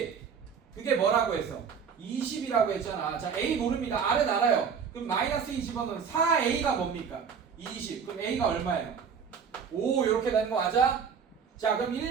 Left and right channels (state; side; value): quieter; left; 6.6 dB